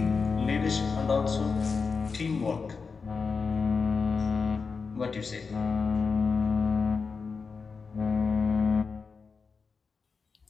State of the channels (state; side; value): quieter; right; 5.0 dB